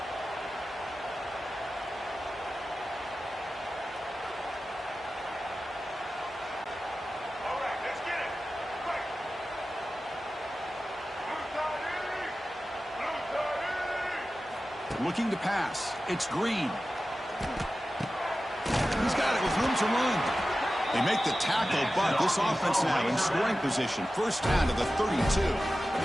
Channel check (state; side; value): normal; both; correlation 0.94